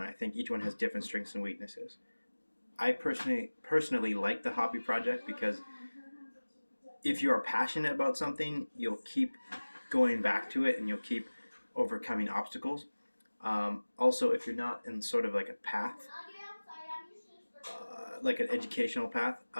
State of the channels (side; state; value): both; inverted; correlation -1.00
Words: I think each one has different strengths and weaknesses. I personally like the hobby project because if you are passionate about something, you'll keep going back to it and you'll keep overcoming obstacles. Also, if you're not in sort of like a path, like an educational path,